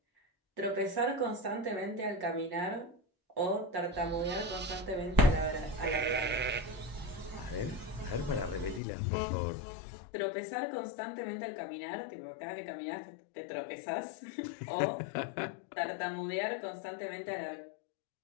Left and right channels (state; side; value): drops out; right; at 8.8 s